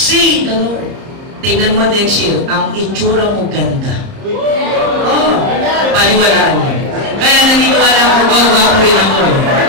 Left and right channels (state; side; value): late; left; 30 ms